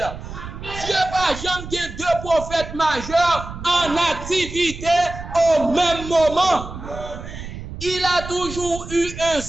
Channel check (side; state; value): right; noise; rumble, 11 dB below the sound